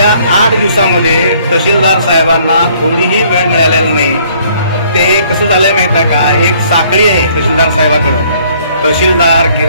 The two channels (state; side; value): inverted; both; correlation -0.61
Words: 8 दिवसामध्ये तहसीलदार साहेबांना थोडीही वेळ मिळालेला नाही. ते कसं झालंय माहित आहे का, एक साखळी आहे तहसीलदार साहेबांकडं. तहसीलदार